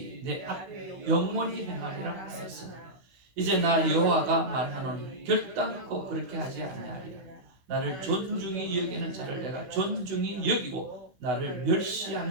내 앞에 영원히 행하리라 하였으나 이제 나 여호와가 말하노니 결단코 그렇게 하지 아니하리라. 나를 존중히 여기는 자를 내가 존중히 여기고 나를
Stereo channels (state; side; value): late; left; 16 ms